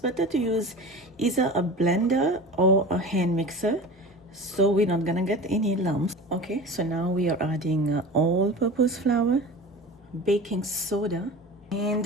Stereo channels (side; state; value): both; normal; correlation 0.34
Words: to use either a blender or a hand mixer so we're not gonna get any lumps. Okay, so now we are adding all-purpose flour, baking soda,